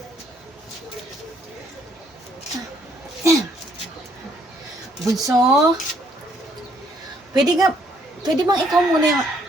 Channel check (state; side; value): normal; both; correlation 0.67